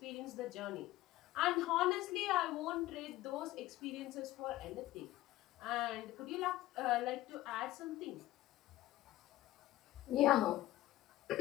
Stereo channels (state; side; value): quieter; right; 16.0 dB